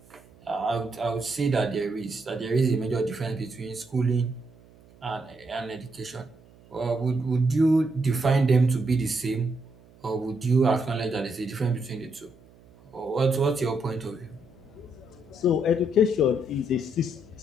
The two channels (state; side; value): noise; right; hum, 26 dB below the sound